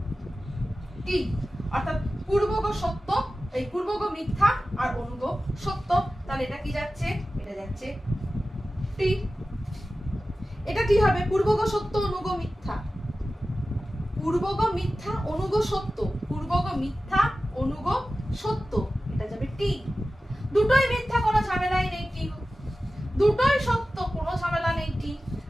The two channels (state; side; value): normal; both; correlation 0.95